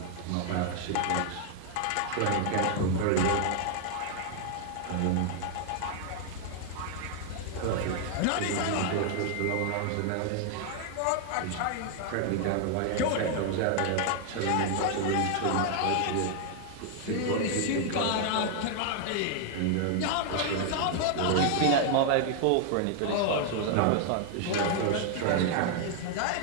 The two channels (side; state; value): both; different; correlation 0.00